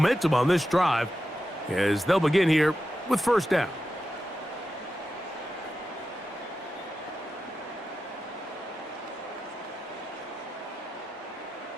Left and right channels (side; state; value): both; normal; correlation 0.90